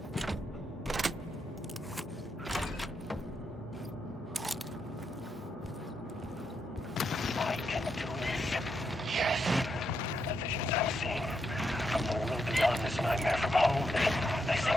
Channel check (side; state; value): both; normal; correlation 0.81